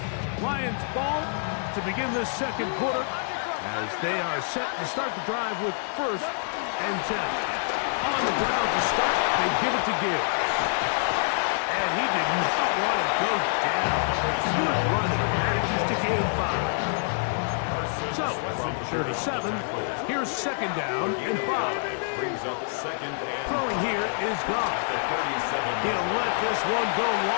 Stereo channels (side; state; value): right; silent; digital silence